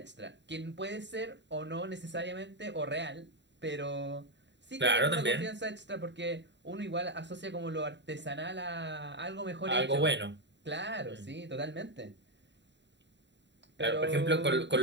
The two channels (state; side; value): late; left; 0.52 ms